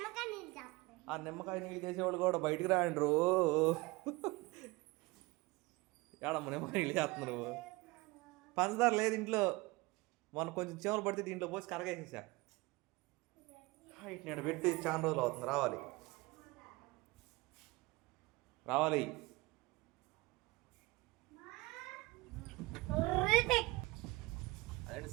ఆ నిమ్మకాయ నీళ్ళు చేసేవాళ్ళు కూడా బయటికి రాండ్రు ఏడమ్మ నిమ్మకాయ నీళ్ళు చేస్తున్నారు పంచదార లేదు ఇంట్లో మొన్న కొంచెం చీమలు పడితే దీంట్లో పోసి కరగేసేసా నేను పెట్టి చాలా రోజులు అవుతుంది రావాలి రావాలి అదే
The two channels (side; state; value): left; quieter; 22.9 dB